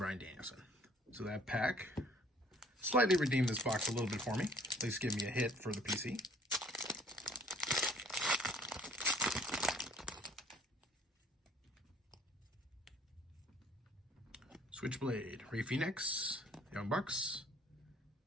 Danielson. So that pack slightly redeemed this box a little bit for me. At least give me a hit for the PC. Switchblade, Ray Phoenix, Young Bucks.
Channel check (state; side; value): normal; both; correlation 0.57